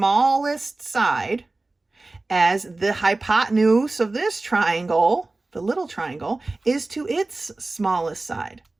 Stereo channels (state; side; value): quieter; left; 3.1 dB